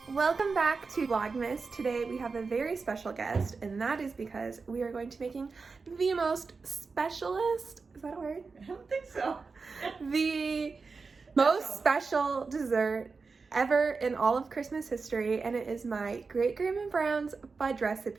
Welcome back to Vlogmas. Today we have a very special guest, and that is because we are going to be making the most specialist, is that a word? I don't think so. The most special dessert ever in all of Christmas history, and it is my Great Grandma Brown's fudge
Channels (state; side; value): quieter; left; 4.5 dB